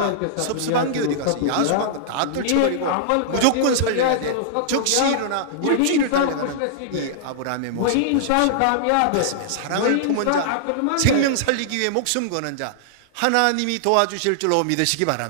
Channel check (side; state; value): both; different; correlation -0.01